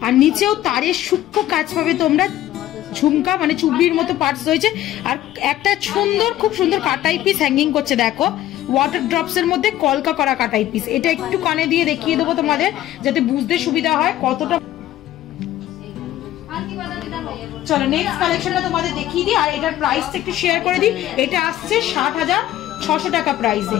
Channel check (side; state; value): right; quieter; 13.6 dB